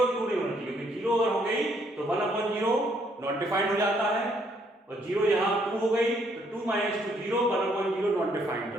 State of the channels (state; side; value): normal; both; correlation 0.69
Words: 2 नहीं होना चाहिए, क्योंकि 0 अगर हो गई तो 1 अपॉन 0 नॉट डिफाइंड हो जाता है और 0 यहां 2 हो गई तो 2 माइनस 2 0, 1 अपॉन 0 नॉट डिफाइंड। तो